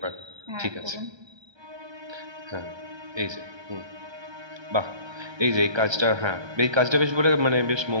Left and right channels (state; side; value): late; left; 1.3 ms